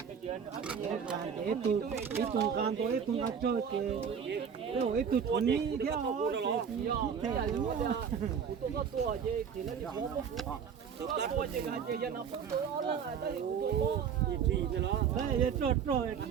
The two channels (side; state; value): left; quieter; 7.2 dB